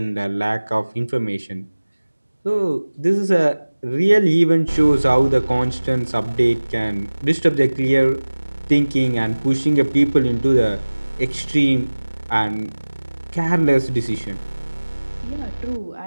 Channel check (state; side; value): inverted; both; correlation -1.00